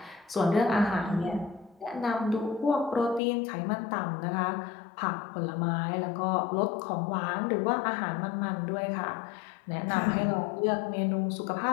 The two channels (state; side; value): drops out; right; at 3.2 s